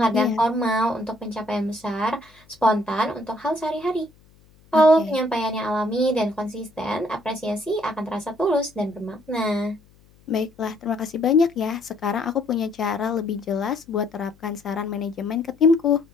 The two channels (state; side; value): noise; left; hum, 29 dB below the sound